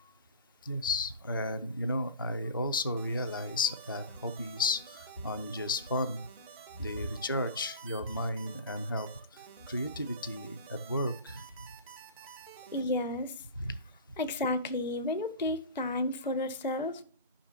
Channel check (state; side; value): inverted; both; correlation -0.36